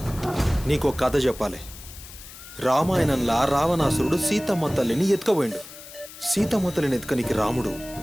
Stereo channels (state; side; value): noise; left; hiss, 16 dB below the sound